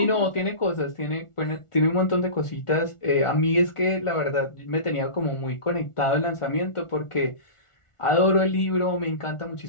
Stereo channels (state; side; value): late; right; 1.4 ms